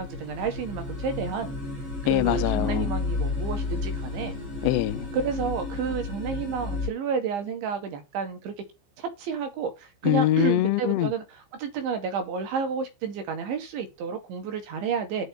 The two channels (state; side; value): late; left; 15 ms